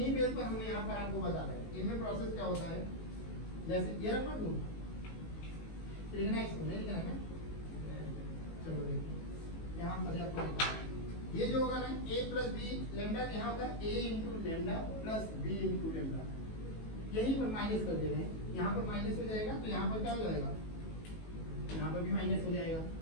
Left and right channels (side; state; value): right; late; 19 ms